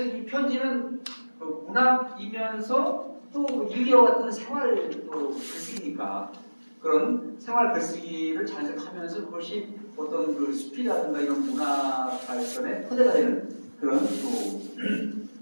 이 편지는 문학이면서 또 일기와 같은 생활도 글쓰기니까 그런 생활 글쓰기를 자연스럽게 하면서 그것이 어떤 그 숲이라든가 이런 문화 발전의 토대가 되는 그런 또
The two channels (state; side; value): inverted; both; correlation -1.00